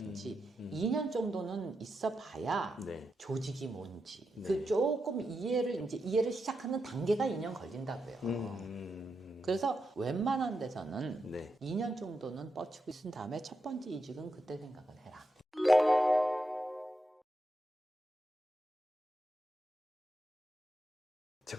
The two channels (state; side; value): normal; both; correlation 0.86